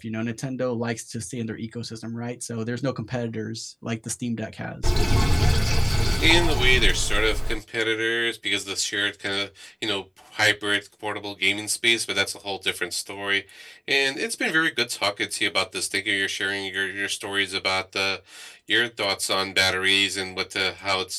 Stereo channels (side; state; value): both; identical; correlation 1.00